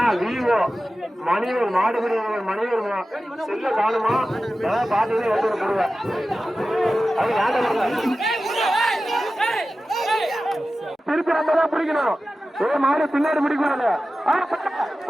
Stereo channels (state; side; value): normal; both; correlation 0.94